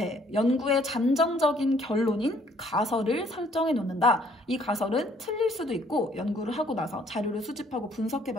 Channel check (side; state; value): both; normal; correlation 0.62